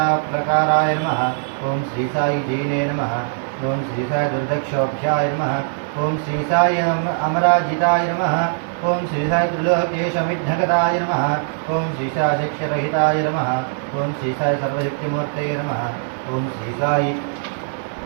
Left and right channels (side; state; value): left; silent; 65 dB below the other